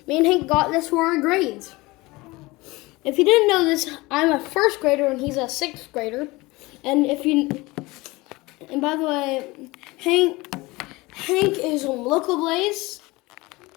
and Hank got this for our grades. If you didn't know this, I'm a first grader and he's a sixth grader. And by the way, Hank is on Local Blaze.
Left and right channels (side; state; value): right; quieter; 22.0 dB